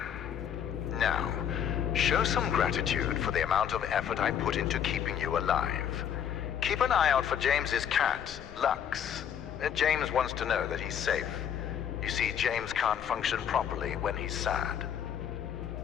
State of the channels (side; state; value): right; quieter; 8.8 dB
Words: Now, show some gratitude for the amount of effort I put into keeping you alive. Keep an eye out for James's cat, Lux. James wants to know that he's safe. You see, James can't function properly when he's sad.